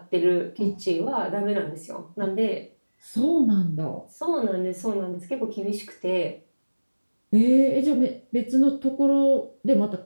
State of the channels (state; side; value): inverted; both; correlation -1.00